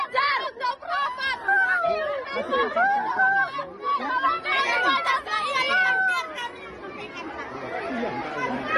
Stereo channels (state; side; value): identical; both; correlation 1.00